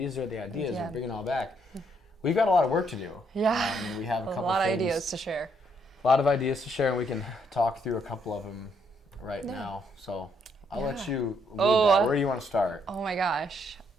are the ideas. We're bringing it all back. We've got a lot of work to do. Yeah. We have a couple lot of things, ideas to share. A lot of ideas to share, and we can talk through a couple of them right now. So I'll let you lead that. Where do you want to start? Oh my gosh.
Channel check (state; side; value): normal; both; correlation 0.72